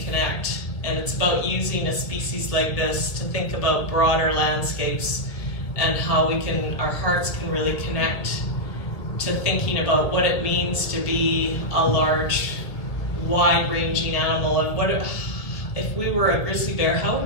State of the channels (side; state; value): right; late; 1.6 ms